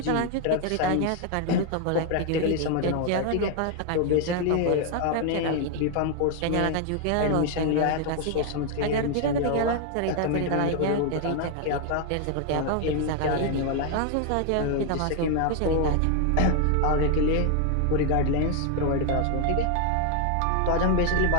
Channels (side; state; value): both; different; correlation 0.00